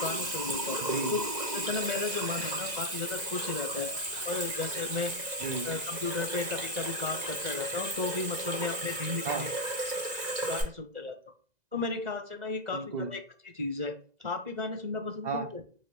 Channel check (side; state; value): left; late; 2.0 ms